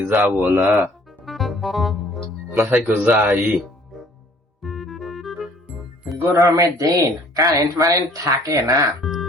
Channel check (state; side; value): normal; both; correlation 0.56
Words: যাবো না মাথায় যাই। গরমের দিন কারেন্ট মারেন্ট থাকে না,